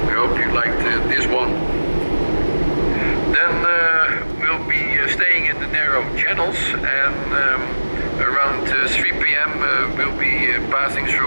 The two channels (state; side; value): inverted; both; correlation -1.00